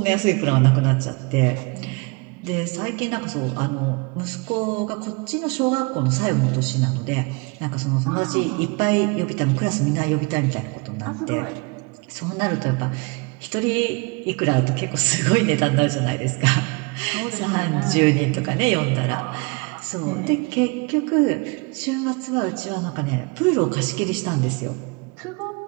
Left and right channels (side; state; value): left; quieter; 29.7 dB